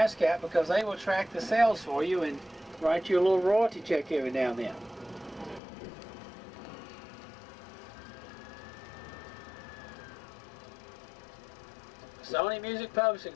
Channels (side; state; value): right; drops out; at 5.6 s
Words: because they will track the sales for you and write you a little royalty check every now and then. Sony Music